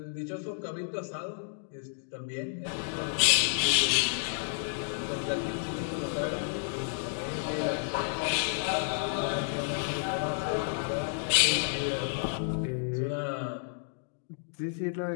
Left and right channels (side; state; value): right; silent; digital silence